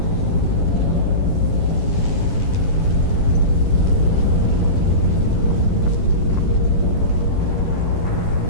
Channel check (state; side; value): late; right; 10 ms